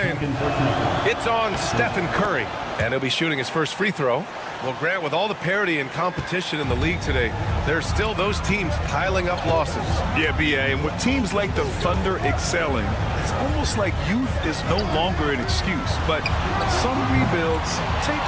It's on Stephen Curry. And he'll be shooting his first free throw. Well, Grant, with all the parity and competition in the league today, there's still those teams piling up losses. Yeah, B.A., and with teams like the Thunder excelling, it's almost like youth is no longer an excuse. But some rebuilds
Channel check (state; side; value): identical; both; correlation 1.00